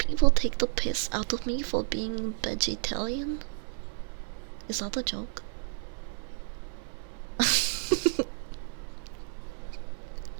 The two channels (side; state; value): left; silent; 57 dB below the other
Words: take the piss out of me for being vegetarian? Is that a joke?